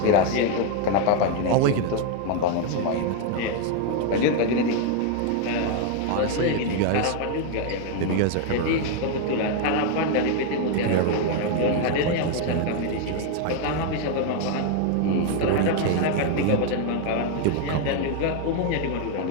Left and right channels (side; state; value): both; different; correlation 0.00